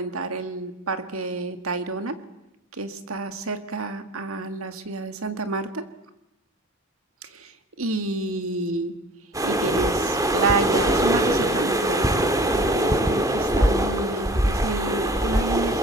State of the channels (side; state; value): both; normal; correlation 0.45